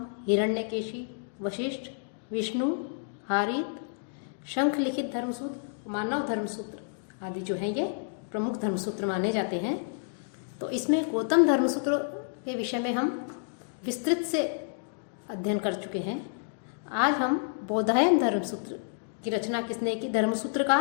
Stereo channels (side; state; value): right; silent; digital silence